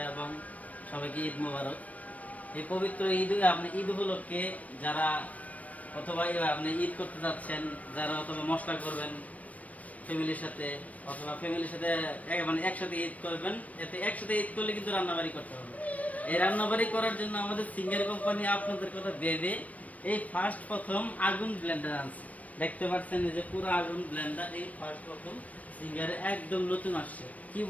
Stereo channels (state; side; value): late; right; 0.069 ms